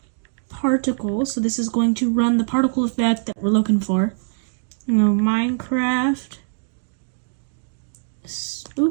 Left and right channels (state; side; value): silent; left; digital silence